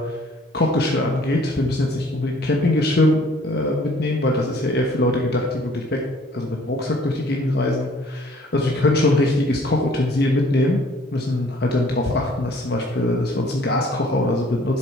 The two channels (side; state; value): both; normal; correlation 0.57